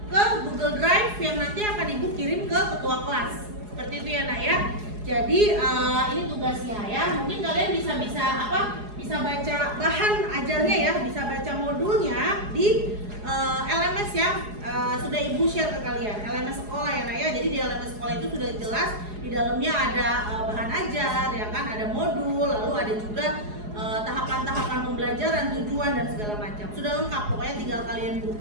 ke Google Drive yang nanti akan ibu kirim ke ketua kelas. Seperti itu ya nak ya. Jadi ini tugasnya ya. Mungkin kalian bisa baca bahan ajarnya ya, bisa baca modulnya di LMS yang sudah ibu share ke kalian, LMS sekolah ya nak ya. Jadi di LMS sekolah itu sudah jelas di dalamnya ada bahan ajar ya kan, ada modul, lalu ada juga tahapan-tahapan pembelajaran, tujuan dan segala macam. Sudah lengkap, pokoknya tinggal kalian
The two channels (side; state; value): left; late; 4.8 ms